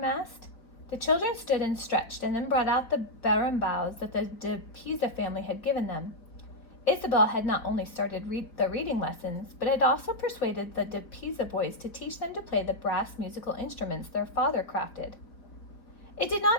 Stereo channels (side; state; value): right; late; 4.6 ms